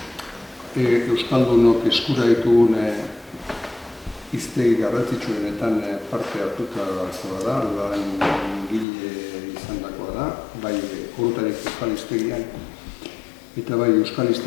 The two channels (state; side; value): drops out; right; at 8.8 s